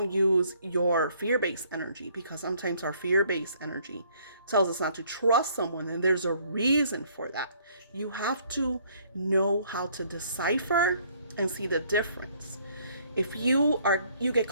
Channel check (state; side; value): inverted; both; correlation -0.63